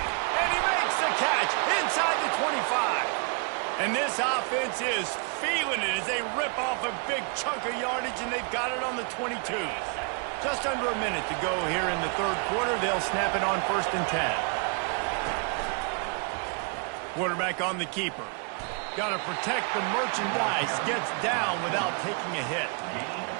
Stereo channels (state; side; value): quieter; left; 37.7 dB